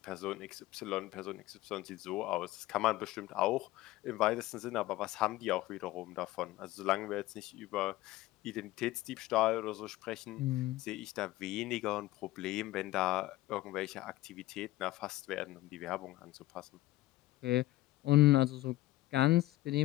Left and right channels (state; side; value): quieter; right; 16.9 dB